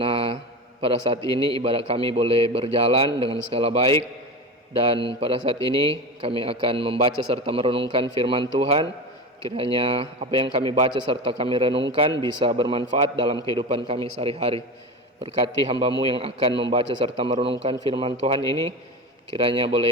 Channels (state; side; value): normal; both; correlation 0.26